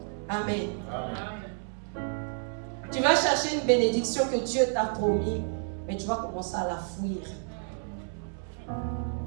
Amen. Amen. Tu vas chercher chercher une bénédiction que Dieu t'a promis, mais tu vas commencer à la fuir.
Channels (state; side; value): silent; left; 58 dB below the other